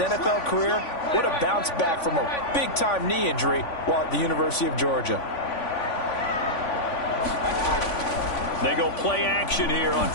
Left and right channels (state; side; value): late; right; 3.5 ms